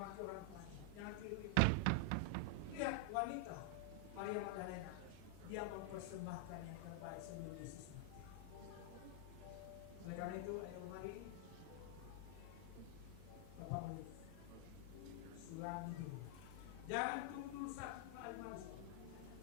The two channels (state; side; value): different; both; correlation 0.00